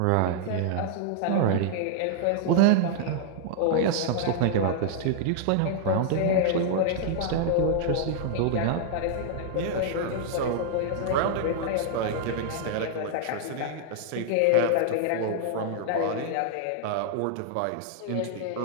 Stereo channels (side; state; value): both; different; correlation -0.01